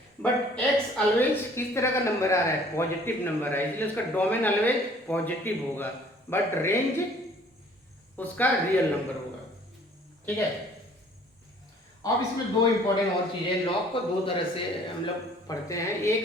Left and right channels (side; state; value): both; normal; correlation 0.55